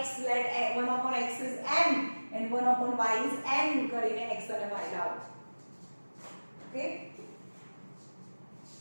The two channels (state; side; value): inverted; both; correlation -1.00